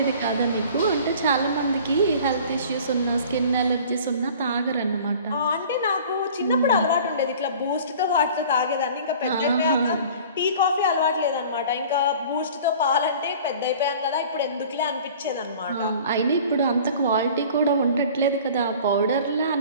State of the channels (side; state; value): both; inverted; correlation -0.46